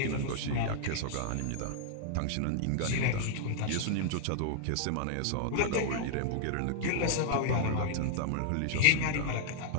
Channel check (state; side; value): different; both; correlation -0.01